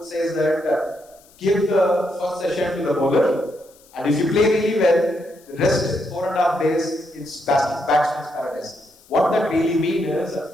says that give the first session to the bowler, and if you play really well, the rest 4.5 days it's batsman's paradise. What that really means is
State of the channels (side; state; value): left; noise; hiss, 28 dB below the sound